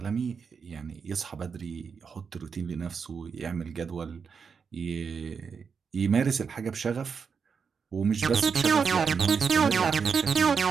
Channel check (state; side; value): quieter; left; 6.0 dB